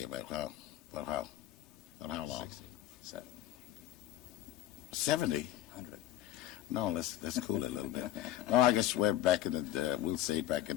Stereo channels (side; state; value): right; quieter; 13.4 dB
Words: about how long? 60, 70. 100. No, let's cool it a little bit. No, I guess we're back in we'll say back in